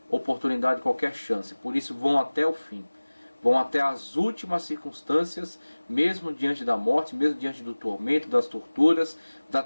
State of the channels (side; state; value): both; inverted; correlation -1.00